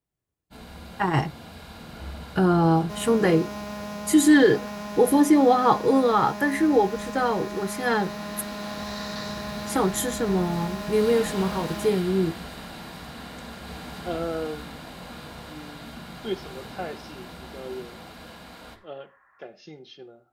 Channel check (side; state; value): both; identical; correlation 1.00